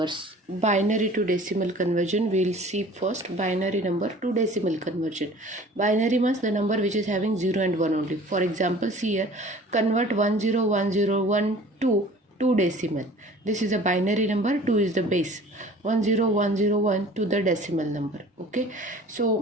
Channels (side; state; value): both; normal; correlation 0.47